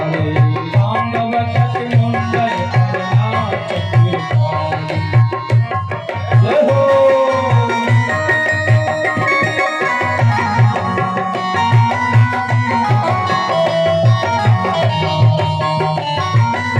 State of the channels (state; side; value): identical; both; correlation 1.00